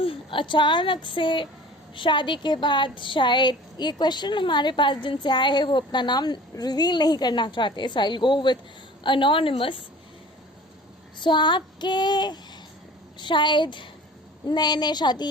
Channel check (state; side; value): normal; both; correlation 0.44